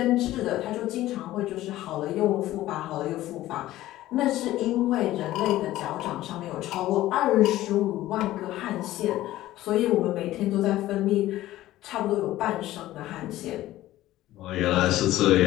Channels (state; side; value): quieter; right; 15.3 dB